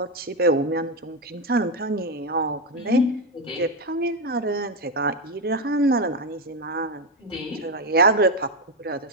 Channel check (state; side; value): normal; both; correlation 0.08